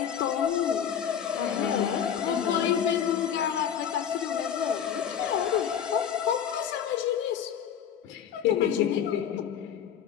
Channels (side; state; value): right; quieter; 8.6 dB